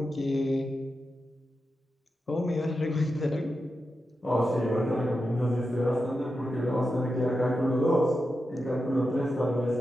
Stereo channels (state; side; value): normal; both; correlation 0.89